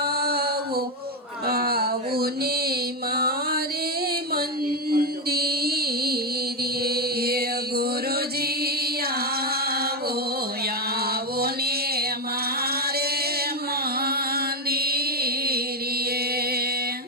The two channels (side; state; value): both; normal; correlation 0.08